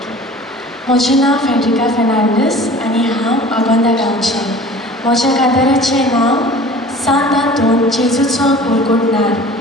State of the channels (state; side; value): normal; both; correlation 0.44